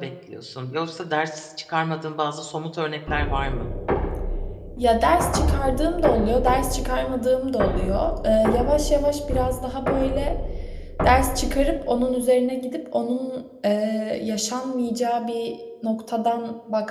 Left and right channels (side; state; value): both; identical; correlation 1.00